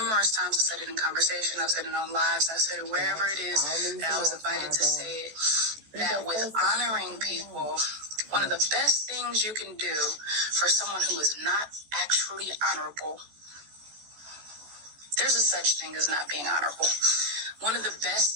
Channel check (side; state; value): left; late; 14 ms